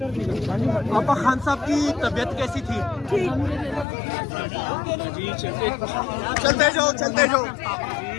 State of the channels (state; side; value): drops out; right; at 3.9 s